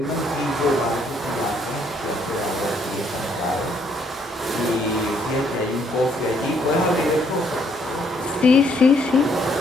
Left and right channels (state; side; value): normal; both; correlation 0.69